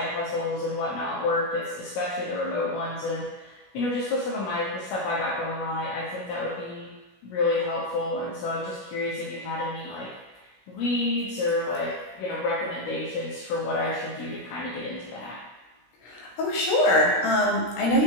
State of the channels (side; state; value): right; late; 16 ms